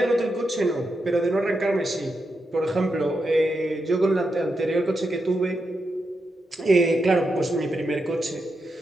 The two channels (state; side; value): normal; both; correlation 0.85